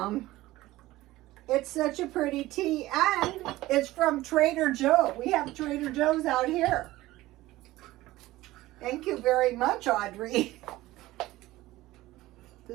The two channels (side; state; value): left; quieter; 17.3 dB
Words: It's such a pretty tea, and it's from Trader Joe. We have Trader Joe's out here. Thank you very much, Audrey.